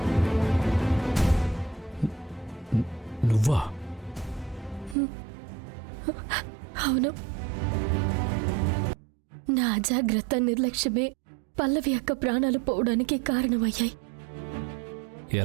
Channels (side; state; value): left; drops out; at 5.0 s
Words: నువ్వా? అవును, నా అజాగ్రత్త నిర్లక్ష్యమే పల్లవి యొక్క ప్రాణాలు పోవడానికి కారణమయ్యాయి.